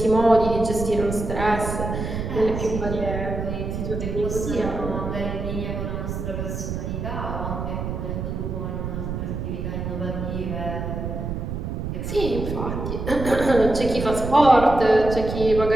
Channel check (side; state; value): right; noise; rumble, 4 dB below the sound